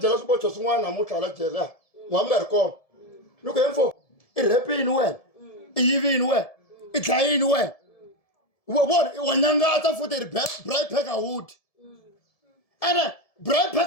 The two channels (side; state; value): right; late; 1.7 ms